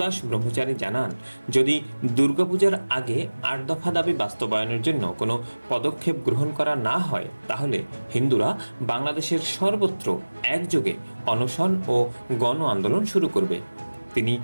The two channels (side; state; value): both; inverted; correlation -1.00